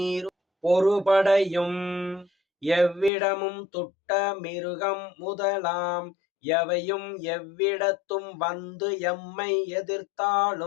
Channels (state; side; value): drops out; right; at 3.1 s